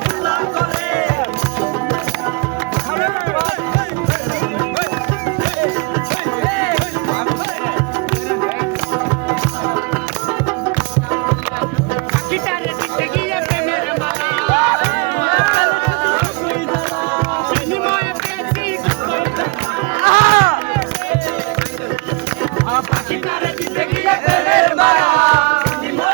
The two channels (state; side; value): quieter; left; 28.6 dB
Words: করে। পাখিটারে দিতে গিয়ে প্রেমের মালা, বিনিময়ে পেয়েছি পাখিটারে দিতে গিয়ে প্রেমের মায়া,